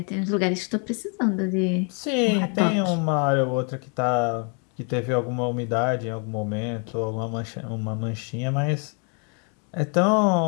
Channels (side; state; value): right; quieter; 38.7 dB